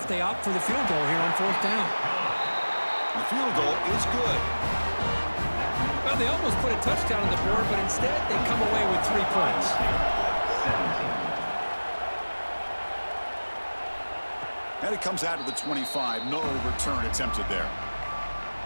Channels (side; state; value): both; inverted; correlation -1.00